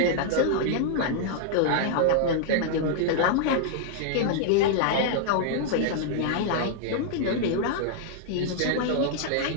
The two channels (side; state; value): both; different; correlation -0.01